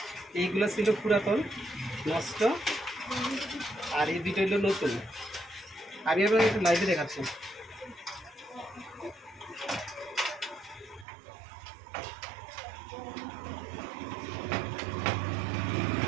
এইগুলো ছিল পুরাতন, নষ্ট, আর এই দুটো হলো নতুন। আমি আপনাকে একটু লাইভে দেখাচ্ছি।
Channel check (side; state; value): left; drops out; at 11.1 s